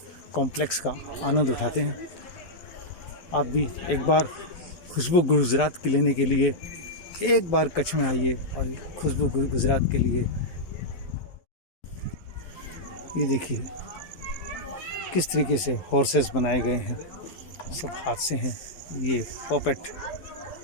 कॉम्प्लेक्स का आनंद उठाते हैं। आप भी एक बार खुशबू गुजरात के लेने के लिए एक बार कच्छ में आइए और खुशबू गुजरात के लिए। ये देखिए किस तरीके से हॉर्सेस बनाए गए हैं, सब हाथ से हैं। ये पॉपेट,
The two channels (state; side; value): late; right; 12 ms